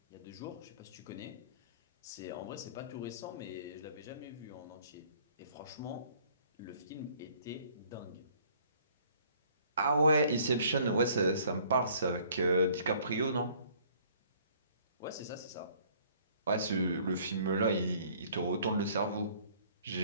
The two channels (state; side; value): inverted; both; correlation -0.58